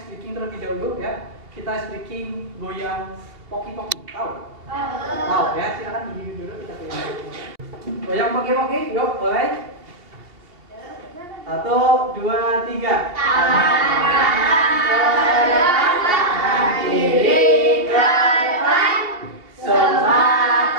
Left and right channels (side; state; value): left; late; 2.8 ms